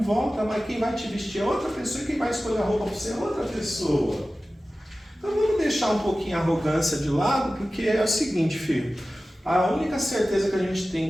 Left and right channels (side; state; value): both; normal; correlation 0.96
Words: volta, mas quem vai te vestir é outra pessoa e quem vai escolher a roupa para você é outra pessoa. Então vamos deixar um pouquinho a arrogância de lado, porque é o seguinte, filho. A única certeza que a gente